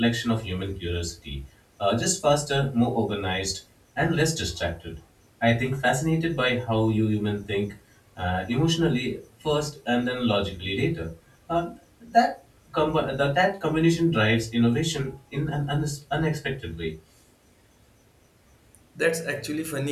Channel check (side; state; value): both; identical; correlation 1.00